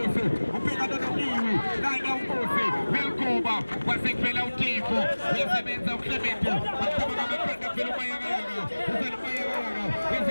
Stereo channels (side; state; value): both; inverted; correlation -1.00